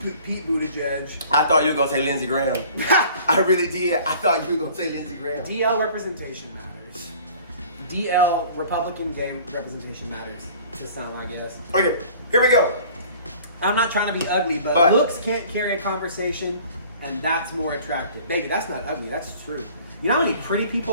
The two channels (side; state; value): both; inverted; correlation -0.49